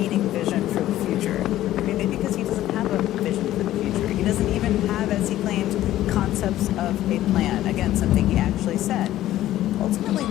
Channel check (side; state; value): right; quieter; 13.9 dB